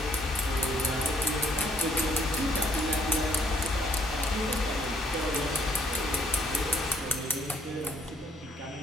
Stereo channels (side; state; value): both; normal; correlation 0.67